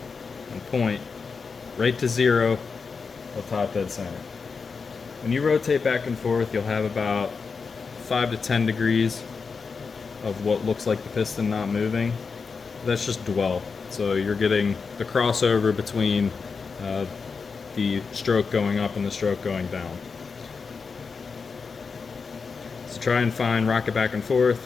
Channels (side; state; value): right; quieter; 5.1 dB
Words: and point right to 0 of top dead center. When you rotate back and forth, you'll have about 5 to 10 degrees of what looks like the piston not moving. that's just dwell. So you're getting the crossover between the stroke going up and the stroke going down. So try and rock it back and forth,